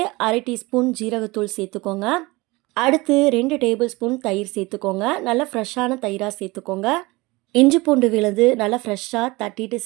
1/2 டீஸ்பூன் ஜீரகத்தூள் சேர்த்துக்கோங்க. அடுத்து 2 டேபிள் ஸ்பூன் தயிர் சேர்த்துக்கோங்க. நல்லா ஃப்ரெஷ்ஷான தயிராக சேர்த்துக்கோங்க. இஞ்சி பூண்டு விழுது நல்லா ஃப்ரெஷ்ஷாக தட்டிட்டு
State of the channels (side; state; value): left; quieter; 22.7 dB